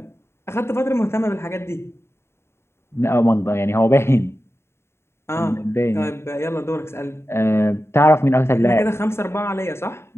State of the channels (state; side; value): late; right; 0.12 ms